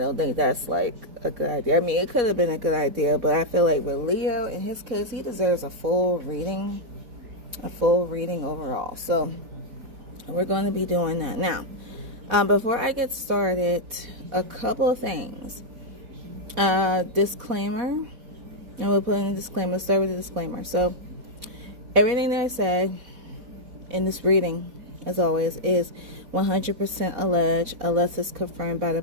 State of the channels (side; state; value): left; late; 4.1 ms